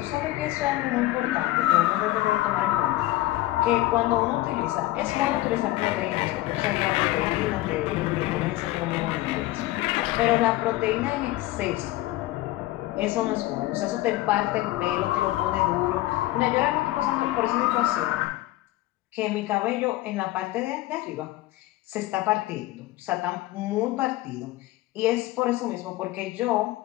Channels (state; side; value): quieter; right; 17.0 dB